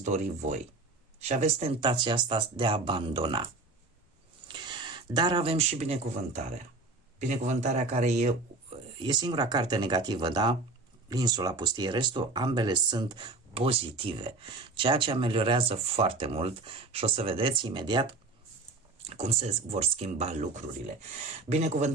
dori voi. Și aveți tentația asta de a abandona. Dar avem și binecuvântarea. Binecuvântarea care e singura carte negativă, da? Insula pustie, restul, ambele sunt pozitive. Ceea ce ameliorează foarte mult și o să vedeți imediat cum se vor schimba lucrurile.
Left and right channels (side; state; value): left; quieter; 3.5 dB